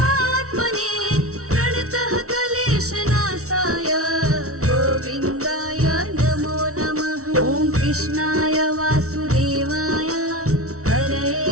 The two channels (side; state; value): left; late; 0.64 ms